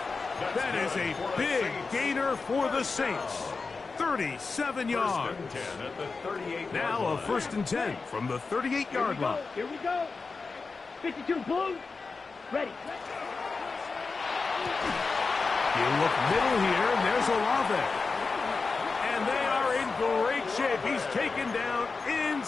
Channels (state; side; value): quieter; right; 4.3 dB